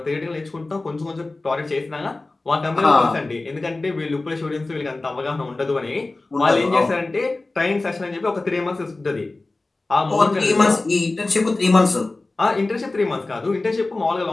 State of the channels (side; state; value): right; quieter; 3.2 dB